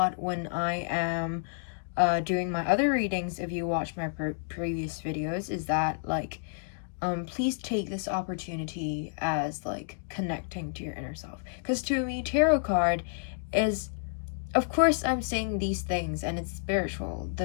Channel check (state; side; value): silent; right; digital silence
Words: when I am doing my other readings, if you watch my previous videos, is that, like, please take this opportunity as like connecting to your inner self, because to me tarot card is, of course I'm saying these things and it's spiritual,